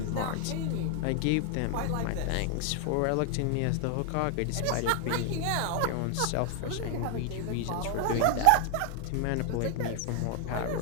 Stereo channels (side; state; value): both; different; correlation 0.00